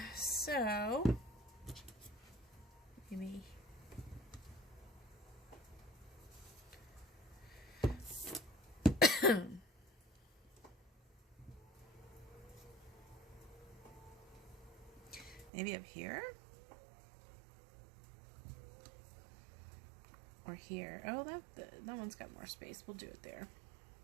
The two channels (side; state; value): left; drops out; at 15.5 s